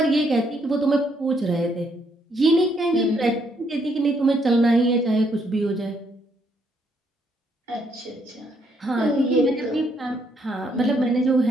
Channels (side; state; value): both; normal; correlation 0.72